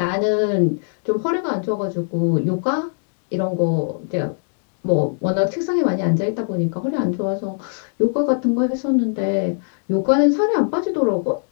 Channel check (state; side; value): silent; right; digital silence